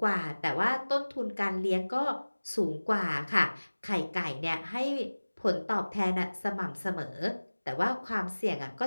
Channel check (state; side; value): inverted; both; correlation -1.00